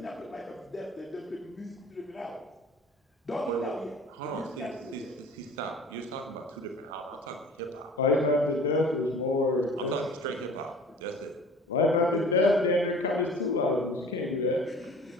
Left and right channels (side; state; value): both; normal; correlation 0.44